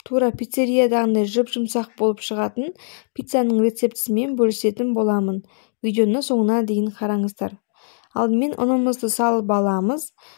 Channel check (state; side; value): silent; right; digital silence